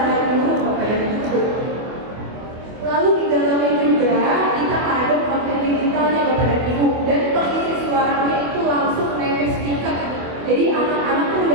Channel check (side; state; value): left; late; 24 ms